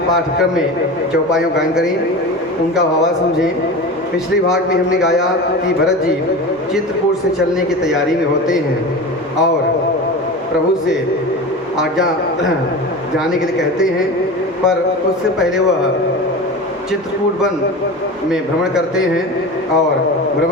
पाठक्रम में चौपाइयों गायन करें, उनका भावा समझें। पिछले भाग में हमने गाया कि भरत जी चित्रकूट से चलने की तैयारी में होते हैं और प्रभु से आज्ञा जाने के लिए कहते हैं, पर उससे पहले वह चित्रकूट वन में भ्रमण करते हैं और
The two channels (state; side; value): normal; both; correlation 0.30